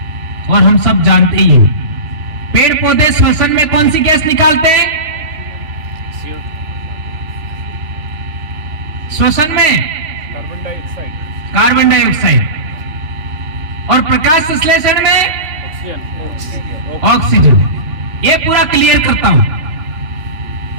और हम सब जानते ही हैं। पेड़ पौधे श्वसन में कौन सी गैस निकालते हैं? श्वसन में कार्बन डाइऑक्साइड, और प्रकाश संश्लेषण में ऑक्सीजन। ये पूरा क्लियर करता हूं,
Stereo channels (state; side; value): late; left; 3.2 ms